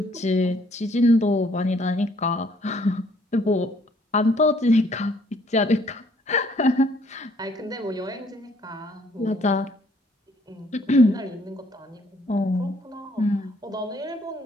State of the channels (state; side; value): normal; both; correlation 0.64